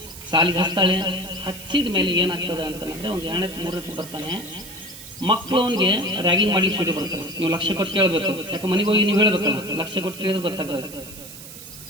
ಸಾಲಿಗೆ ಹಚ್ತಾಳೆ. ಹಚ್ಚಿದ ಮೇಲೆ ಏನಾಗ್ತದೆ ಅಂತಂದ್ರೆ, ಒಂದು 2-3 ಬರ್ತಾನೆ. ಮಕ್ಕಳು ಅವನಿಗೆ ರ್ಯಾಗಿಂಗ್ ಮಾಡ್ಲಿಕ್ಕೆ ಶುರು ಬರ್ತಾರೆ. ನೀವು ಲಕ್ಷ ಕೊಟ್ಟು ಕೇಳಬೇಕು, ಯಾಕೆ ಮನೆಗೆ ಹೋಗಿ ನೀವು ಹೇಳ್ಬೇಕಲ್ಲ, ಲಕ್ಷ ಕೊಟ್ಟು ಕೇಳಿದ್ರೆ ಗೊತ್ತಾಗ್ತದೆ.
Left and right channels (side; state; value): right; noise; hiss, 14 dB below the sound